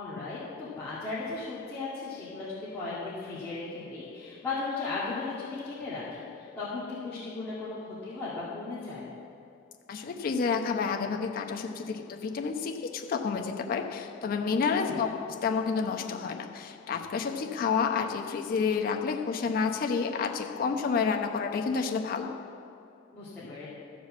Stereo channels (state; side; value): quieter; right; 4.8 dB